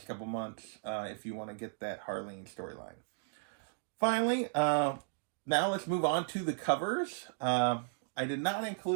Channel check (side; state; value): left; silent; digital silence